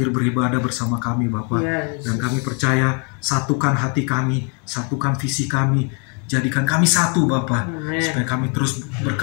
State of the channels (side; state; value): right; quieter; 36.8 dB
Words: beribadah bersama kami Bapak. Dan kami percaya, satukan hati kami, satukan visi kami, jadikan kami satu Bapak, supaya kami terus